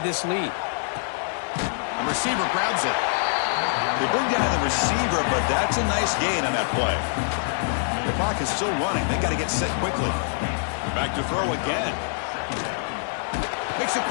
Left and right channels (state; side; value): silent; right; digital silence